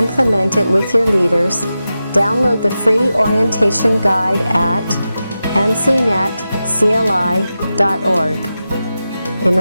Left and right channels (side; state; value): both; inverted; correlation -0.92